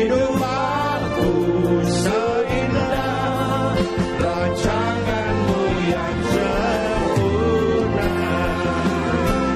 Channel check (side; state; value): both; identical; correlation 1.00